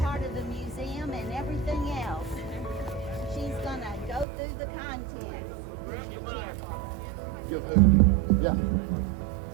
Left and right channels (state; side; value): drops out; left; at 4.2 s